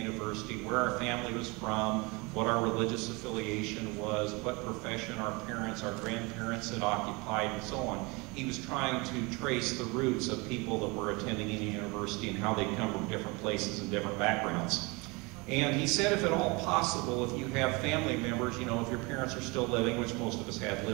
University, where our family was from, what our religious affiliation was, what profession our parents, our grandparents had occupied, and so on. He was trying to trace the roots of people that were attending Indiana University and how they come from different places and different backgrounds. And he said, if at all possible, if you have family members, you know, if your parents are still living, which most of us had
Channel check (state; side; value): quieter; left; 26.8 dB